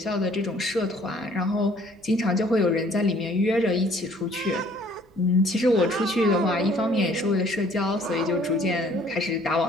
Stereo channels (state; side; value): normal; both; correlation 0.58